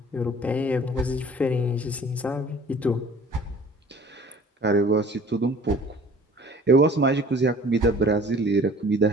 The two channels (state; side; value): normal; both; correlation 0.49